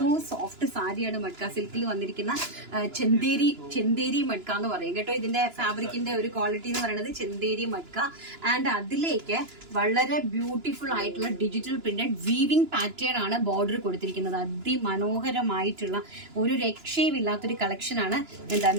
സോഫ്റ്റ് സാരിയാണ് മഡ്ക സിൽക്കിൽ വന്നിരിക്കുന്ന ചെന്തേരി മഡ്ക എന്ന് പറയും കേട്ടോ. ഇതിന്റെ ഫാബ്രിക്കിന്റെ ഒരു ക്വാളിറ്റി എന്ന് പറയുന്നത് ചെന്തേരി മഡ്ക. ആൻഡ് അതിലേക്ക് വളരെ ബ്യൂട്ടിഫുൾ ആയിട്ടുള്ള ഡിജിറ്റൽ പ്രിന്റഡ് വീവിംഗ് പാറ്റേൺ ആണ് ബോർഡർ കൊടുത്തിരിക്കുന്നത്. അതിമനോഹരമായിട്ടുള്ള ഒരു രക്ഷയുമില്ലാത്തൊരു കളക്ഷനാണ്.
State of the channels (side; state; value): left; late; 2.9 ms